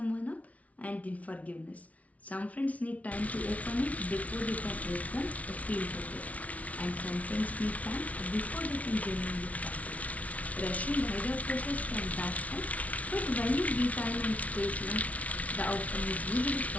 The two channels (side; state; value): right; late; 0.068 ms